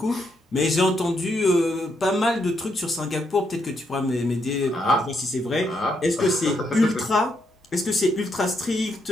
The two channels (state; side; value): normal; both; correlation 0.78